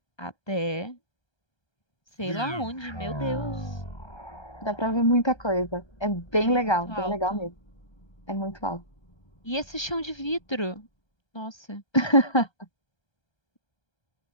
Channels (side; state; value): right; late; 1.3 ms